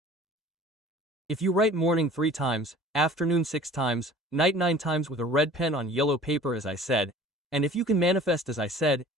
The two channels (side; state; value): both; normal; correlation 0.46